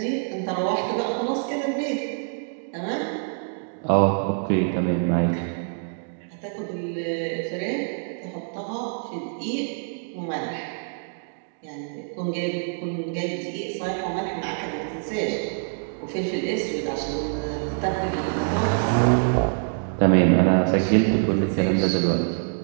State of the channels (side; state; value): left; silent; digital silence